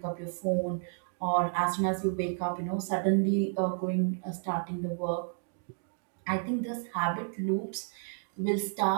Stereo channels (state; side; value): silent; left; 57 dB below the other